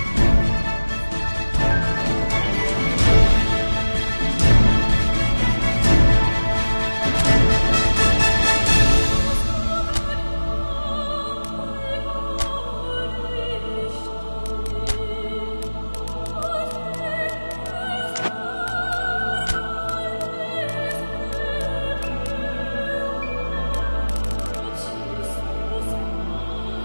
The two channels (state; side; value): inverted; both; correlation -1.00